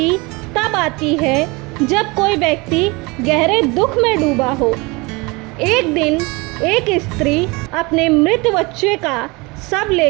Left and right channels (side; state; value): left; quieter; 25.7 dB